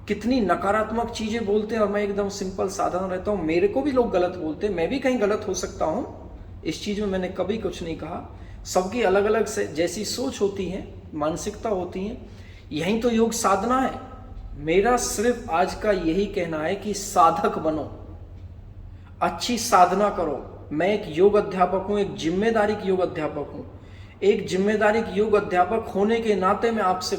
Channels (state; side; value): identical; both; correlation 1.00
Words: कितनी नकारात्मक चीजें बोलते हैं और मैं एकदम सिंपल साधारण रहता हूं। मेरे को भी लोग गलत बोलते हैं, मैं भी कहीं गलत हो सकता हूं, इस चीज में मैंने कभी कुछ नहीं कहा। सबकी अलग अलग से जैसी सोच होती है, मानसिकता होती है। यही तो योग साधना है। मेरा सिर्फ आज का यही कहना है कि साधक बनो, अच्छी साधना करो। मैं एक योग अध्यापक हूं, एक जिम्मेदारी योग अध्यापक हूं। एक जिम्मेदारी योग अध्यापक होने के नाते मैं आपसे